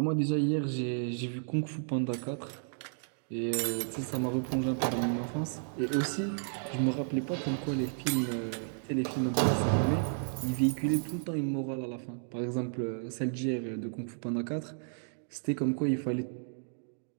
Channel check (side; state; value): left; silent; digital silence